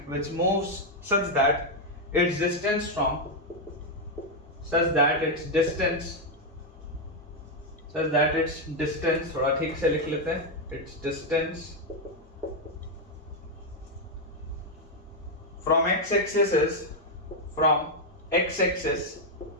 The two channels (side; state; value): both; normal; correlation 0.01